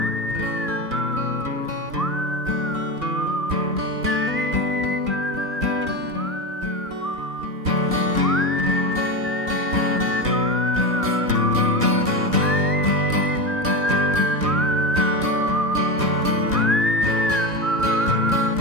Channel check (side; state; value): both; normal; correlation 0.20